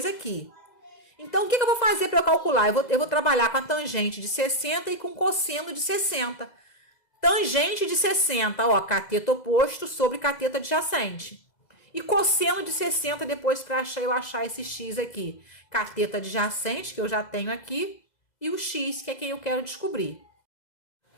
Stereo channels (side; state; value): right; late; 2.0 ms